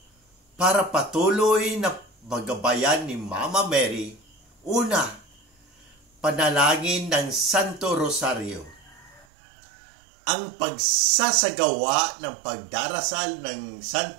para patuloy na magabayan ni Mama Mary. Una, panalangin ng Santo Rosario. Ang pagsasagawa ng pagdarasal ng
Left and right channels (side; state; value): left; drops out; at 9.2 s